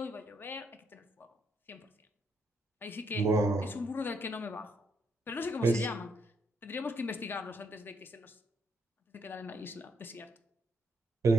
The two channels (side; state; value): both; normal; correlation 0.75